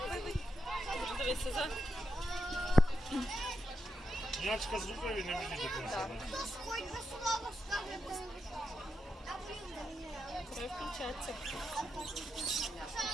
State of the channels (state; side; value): normal; both; correlation 0.85